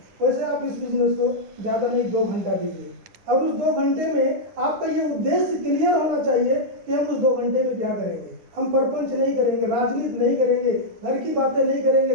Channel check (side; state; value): left; late; 9.7 ms